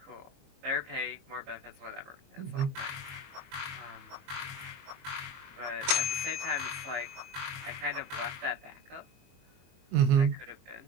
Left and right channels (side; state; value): left; late; 22 ms